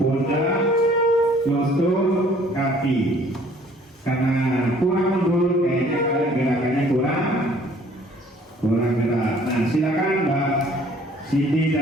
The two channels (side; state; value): both; normal; correlation 0.57